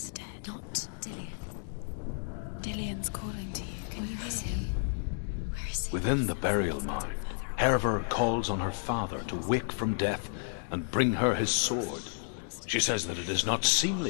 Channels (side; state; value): right; silent; digital silence